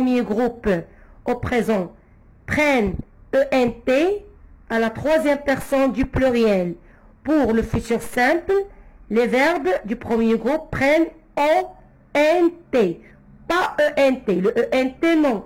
groupe au présent prennent ENT à la troisième personne du pluriel. Pour le futur simple, les verbes du premier groupe prennent ONT, pas ENT. Le ENT, non.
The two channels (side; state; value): both; identical; correlation 1.00